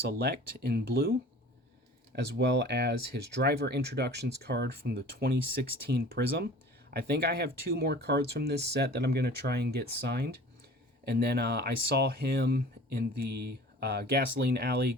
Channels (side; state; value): both; normal; correlation 0.44